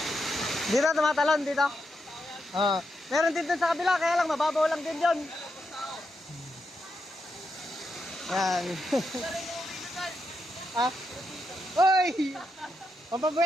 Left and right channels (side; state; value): both; normal; correlation 0.83